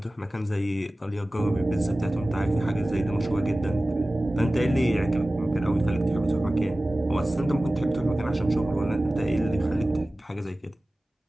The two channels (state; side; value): normal; both; correlation 0.97